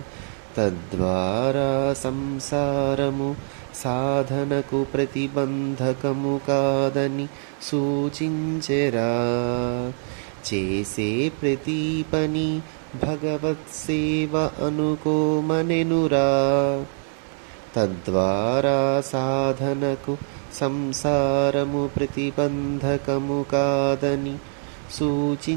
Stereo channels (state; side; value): silent; left; 61 dB below the other